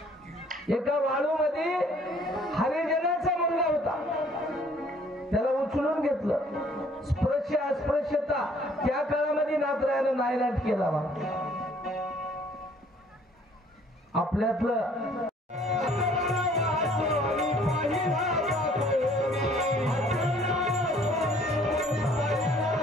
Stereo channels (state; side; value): normal; both; correlation 0.58